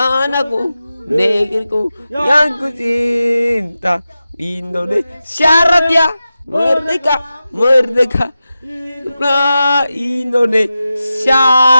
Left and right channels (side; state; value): both; inverted; correlation -0.93